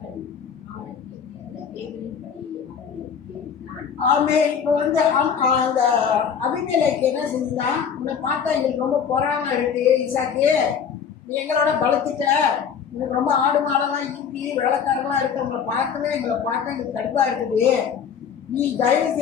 அவனுக்கு ஆமே. இப்போ அந்த அபிமெலேக்கு என்ன செஞ்சுதான், உன்னை பார்த்தா எங்களுக்கு ரொம்ப பொறாம இருக்கு ஈசாக்கு, நீ எங்களோட பலத்துட்ட, எனக்கு ரொம்ப ஆடு மாடெல்லாம் ஈட்டி வேலைக்காரங்களாம் இருக்கு, உங்களை பார்க்கவே எங்களை பார்க்க எனக்கு கடுப்பா இருக்குது, நீ தயவு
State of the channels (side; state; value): right; quieter; 7.2 dB